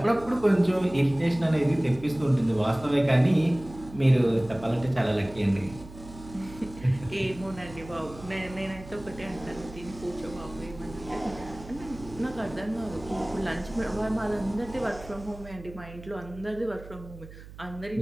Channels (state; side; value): noise; right; hum, 16 dB below the sound